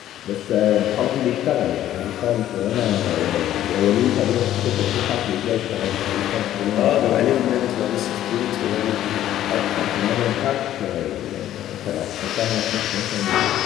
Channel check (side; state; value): right; quieter; 12.4 dB